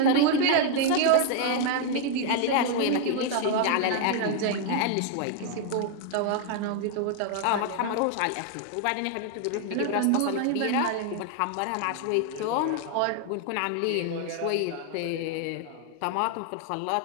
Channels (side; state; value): both; different; correlation 0.00